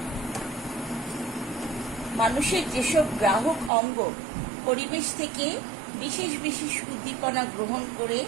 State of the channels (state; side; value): drops out; left; at 3.7 s